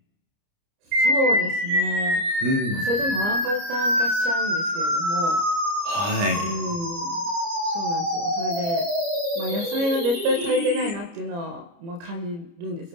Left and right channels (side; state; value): left; late; 29 ms